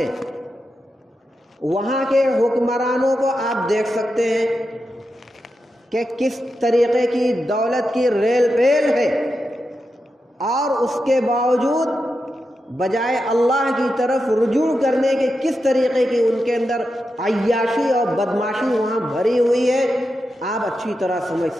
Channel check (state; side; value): normal; both; correlation 0.88